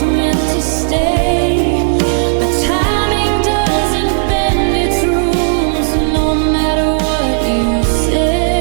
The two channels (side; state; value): left; silent; 66 dB below the other